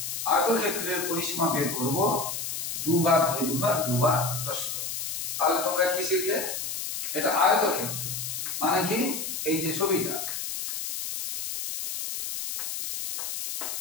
আয়তক্ষেত্রের পরিসীমা বের করব, দুবার দৈর্ঘ্য আর দুবার প্রস্থ। তাহলে তোমরা কি শিখলে? এটা আয়তক্ষেত্র মানে কি? এই যে ছবিটা,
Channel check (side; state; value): left; noise; hiss, 4 dB below the sound